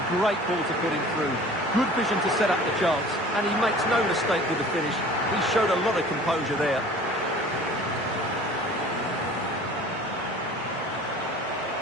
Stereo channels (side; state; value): both; normal; correlation 0.45